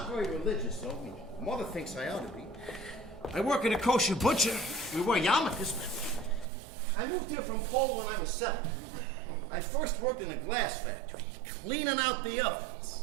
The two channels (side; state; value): left; drops out; at 6.5 s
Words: very religious, though. Mother thinks I ought to be. I work at a kosher butcher. We wear yarmulkes. I moved here from Poland when I was 7. I first worked in a glass factory, cleaning out the